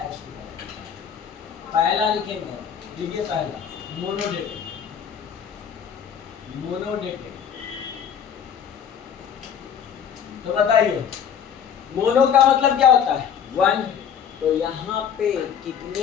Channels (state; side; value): quieter; right; 8.0 dB